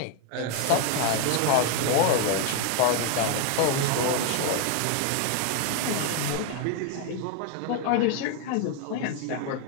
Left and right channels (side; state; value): both; different; correlation 0.01